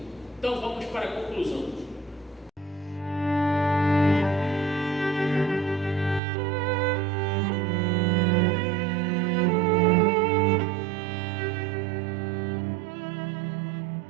Então vamos para a conclusão.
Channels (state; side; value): drops out; left; at 6.2 s